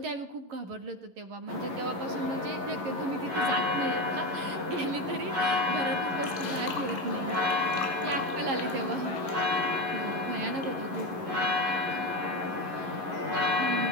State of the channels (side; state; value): left; late; 11 ms